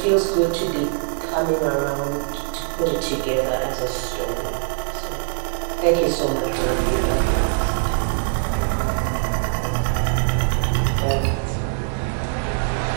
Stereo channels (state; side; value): silent; left; 64 dB below the other